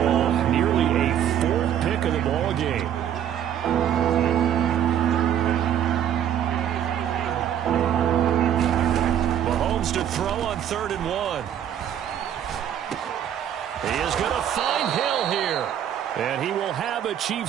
Nearly a 4th pick of the ball game. Mahomes to throw on 3rd and 1. He is going to find Hill here. And he will have a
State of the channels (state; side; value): quieter; left; 10.0 dB